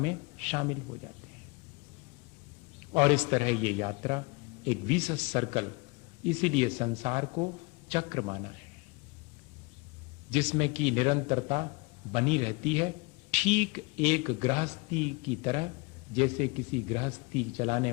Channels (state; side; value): quieter; right; 27.3 dB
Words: शामिल हो जाते हैं। और इस तरह ये यात्रा एक विशेष सर्कल, इसीलिए संसार को चक्र माना है, जिसमें की निरंतरता बनी रहती है, ठीक एक गृहस्थी की तरह। जैसे किसी गृहस्थी चलाने